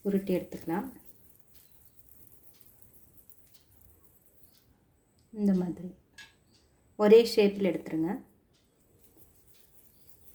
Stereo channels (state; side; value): identical; both; correlation 1.00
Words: உருட்டி எடுத்துக்கலாம். இந்த மாதிரி ஒரே ஷேப்பில் எடுத்துருங்க.